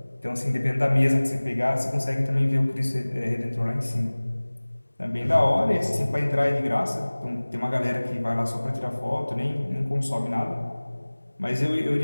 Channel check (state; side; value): inverted; both; correlation -1.00